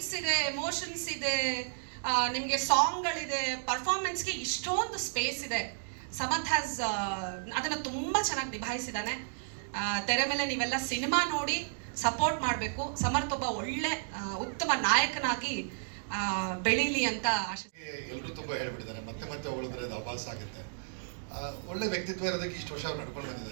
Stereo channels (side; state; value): left; silent; digital silence